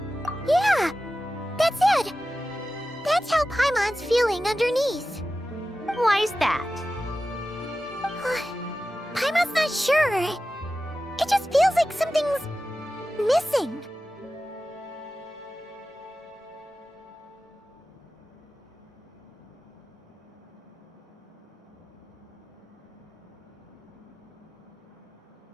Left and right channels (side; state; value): both; normal; correlation 0.94